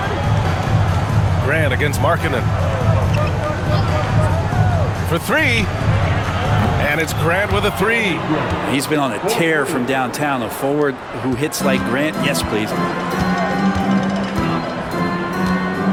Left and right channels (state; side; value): identical; both; correlation 1.00